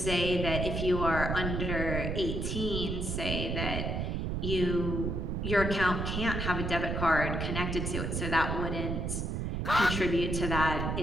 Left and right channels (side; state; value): right; noise; rumble, 1 dB below the sound